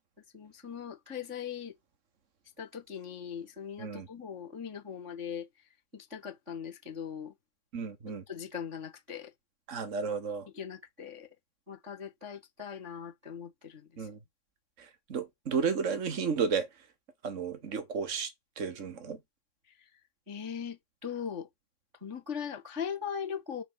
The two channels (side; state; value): left; late; 3.6 ms